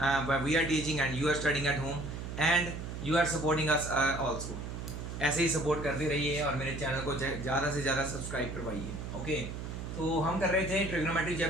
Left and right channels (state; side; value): noise; right; hum, 7 dB below the sound